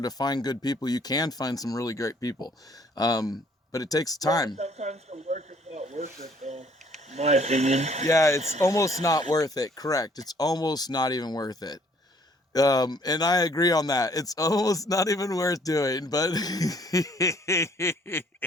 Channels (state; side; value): normal; both; correlation 0.61